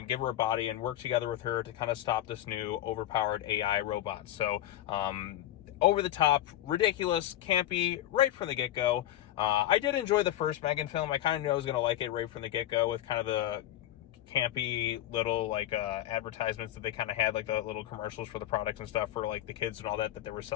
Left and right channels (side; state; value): right; quieter; 13.1 dB